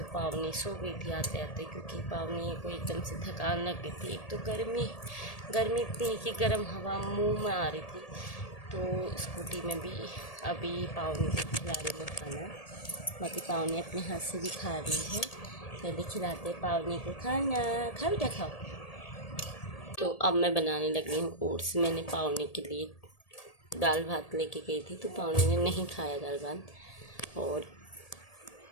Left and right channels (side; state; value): right; late; 1.8 ms